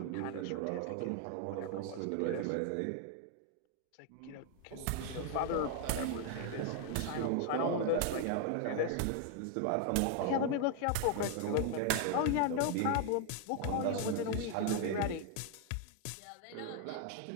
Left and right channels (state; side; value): different; both; correlation 0.00